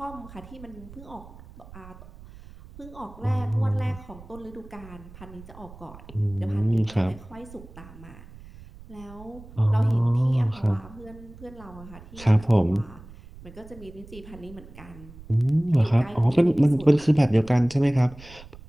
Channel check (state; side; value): noise; right; rumble, 18 dB below the sound